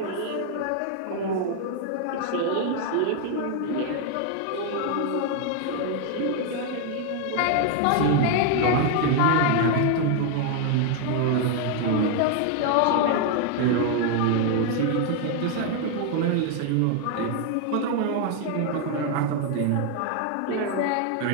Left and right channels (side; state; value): both; different; correlation 0.01